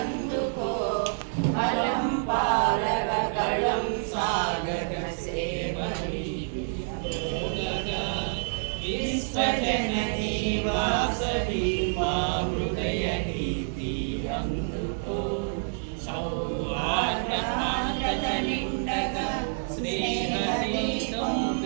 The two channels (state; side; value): silent; left; digital silence